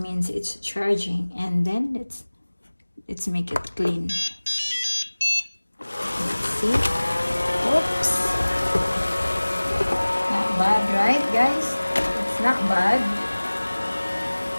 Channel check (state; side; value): inverted; both; correlation -1.00